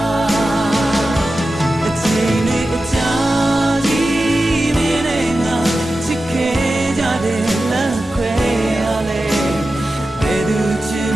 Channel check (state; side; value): normal; both; correlation 0.93